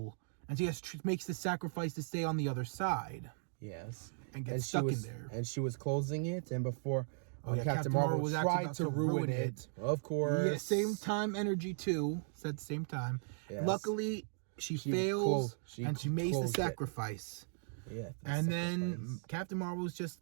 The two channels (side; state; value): left; silent; digital silence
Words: And she makes the sacrifice to stay on the other side. Yes. And get stuck in there. And she was closing it, and before... Captain Marvel was tried to ruin it. Of course. Yeah, same time energy too. Said same time. Yes. Luckily, she fails and she makes the sacrifice. Yeah. And then Captain Marvel was